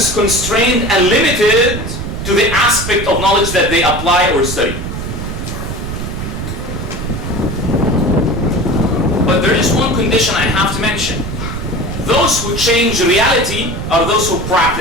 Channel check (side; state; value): right; noise; rumble, 5 dB below the sound